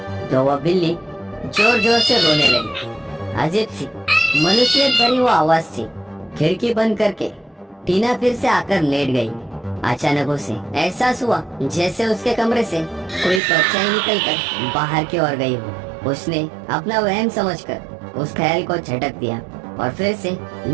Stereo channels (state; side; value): drops out; left; at 13.4 s